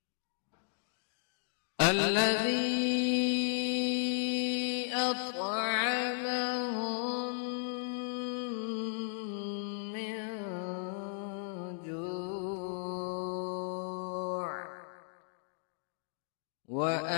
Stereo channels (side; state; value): right; silent; digital silence